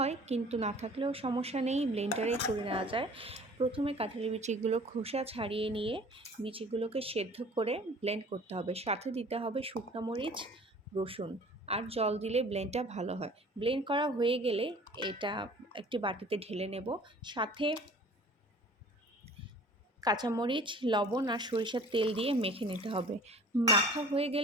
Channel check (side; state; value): both; normal; correlation 0.47